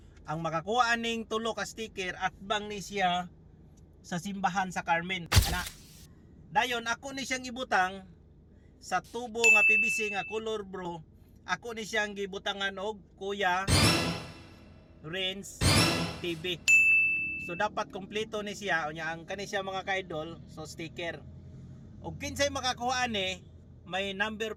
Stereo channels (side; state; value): both; identical; correlation 1.00